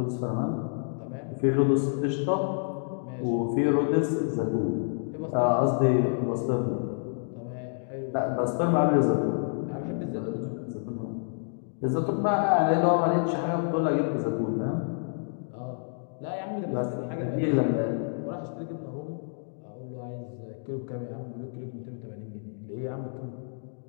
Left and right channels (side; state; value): right; silent; digital silence